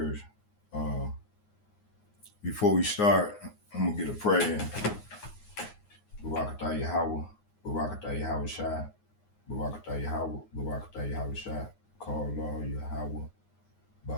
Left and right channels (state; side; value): late; right; 9.6 ms